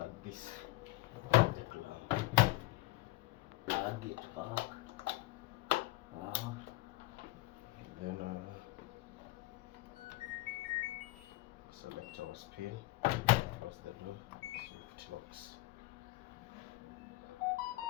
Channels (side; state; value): right; quieter; 19.6 dB